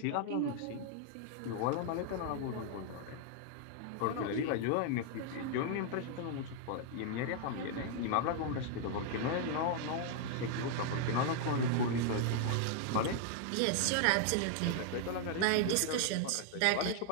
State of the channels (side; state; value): both; different; correlation 0.00